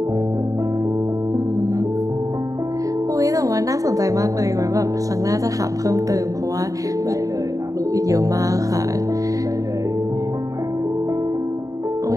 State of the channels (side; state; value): left; late; 0.16 ms